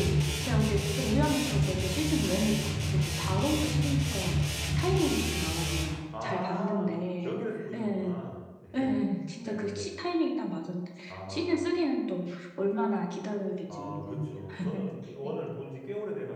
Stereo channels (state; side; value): identical; both; correlation 1.00